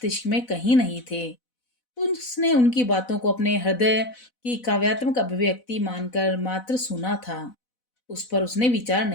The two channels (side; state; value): right; late; 4.0 ms